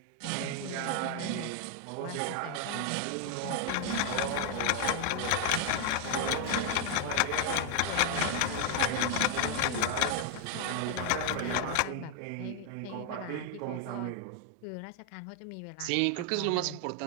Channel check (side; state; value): both; different; correlation 0.00